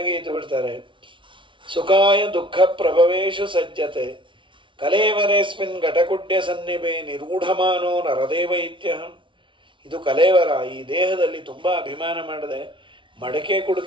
ಇದ್ದು ಬಿಡ್ತಾರೆ. ಸುಖಾಯ ದುಃಖ ಪ್ರಭವೇಶು ಸಜ್ಜತೆ ಕಲೇವರೇಸ್ಮಿನ್ ಘಟಕುಡ್ಯ ಸನ್ನಿಭೆ ನಿರೂಢಮಾನೋ ನರದೇವ ಇತ್ಯಹಂ. ಇದು ಕಲೇವರ, ಈ ದೇಹದಲ್ಲಿ ತುಂಬ ಅಭಿಮಾನ ಮಾಡಿದೆ, ಮಡಕೆ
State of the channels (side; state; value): left; late; 0.24 ms